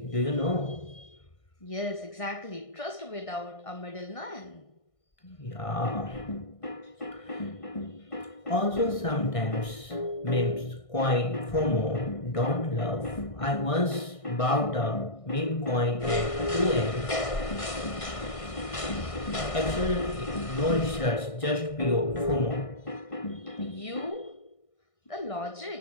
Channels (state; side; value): late; right; 1.6 ms